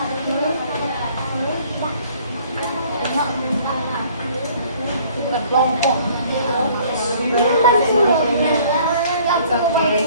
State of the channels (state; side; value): inverted; both; correlation -0.56